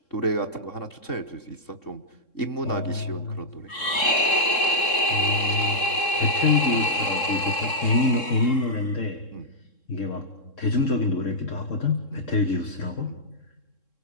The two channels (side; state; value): right; late; 3.7 ms